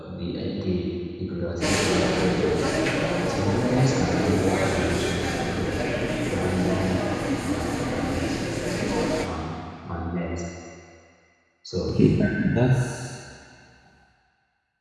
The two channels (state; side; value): identical; both; correlation 1.00